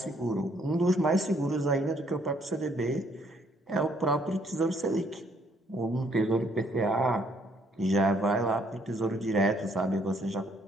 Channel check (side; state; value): both; normal; correlation 0.67